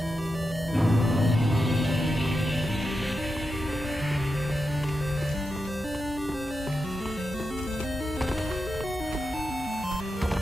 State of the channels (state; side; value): normal; both; correlation 0.88